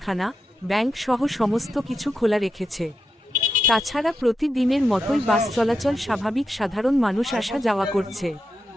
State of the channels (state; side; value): normal; both; correlation 0.87